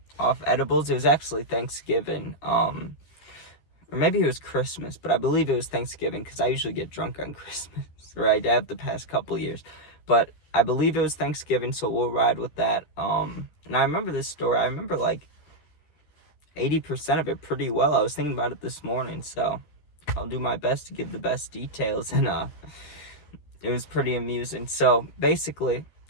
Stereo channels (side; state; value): right; late; 13 ms